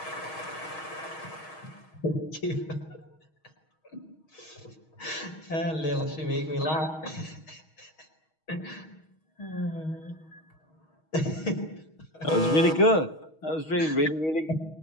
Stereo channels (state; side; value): late; right; 6.3 ms